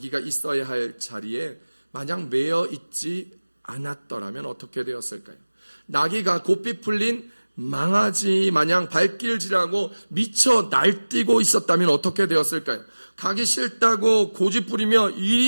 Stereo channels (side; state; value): both; inverted; correlation -1.00